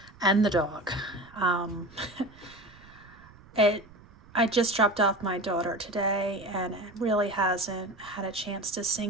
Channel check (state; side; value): noise; right; rumble, 23 dB below the sound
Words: and the dog. I just dropped off my daughter today, and it really hasn't had a chance to